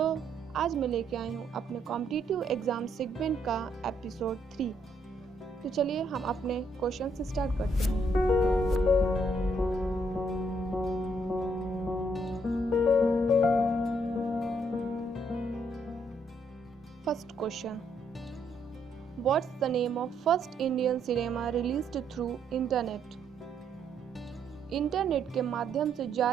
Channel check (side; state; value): both; normal; correlation 0.72